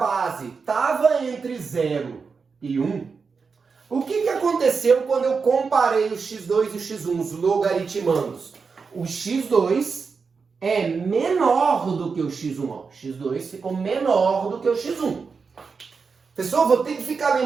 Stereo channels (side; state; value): left; quieter; 5.1 dB